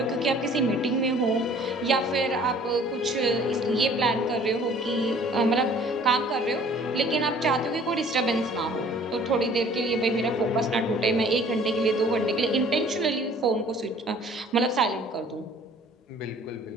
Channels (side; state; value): both; normal; correlation 0.53